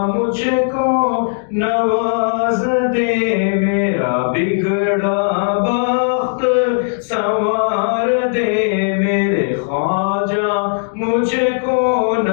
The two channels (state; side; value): silent; right; digital silence